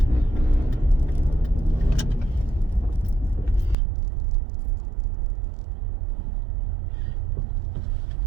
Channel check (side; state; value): left; drops out; at 3.8 s